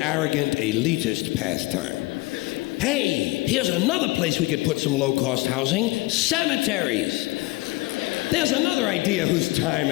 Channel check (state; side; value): quieter; right; 21.9 dB